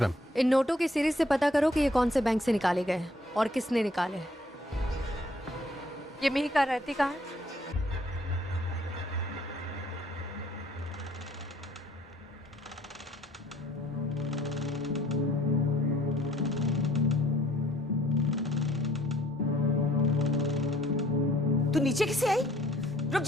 इन नोटों की सीरीज से पता करो कि ये कौन से बैंक से निकाले गए हैं और किसने निकाले हैं। ये मेहिका रहती कहाँ है? तू नीचे किसे आई? रुक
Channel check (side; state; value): both; normal; correlation 0.60